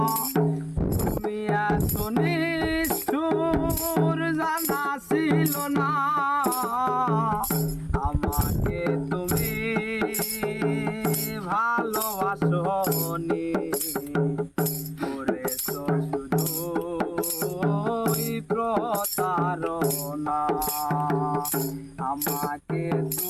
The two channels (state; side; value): identical; both; correlation 1.00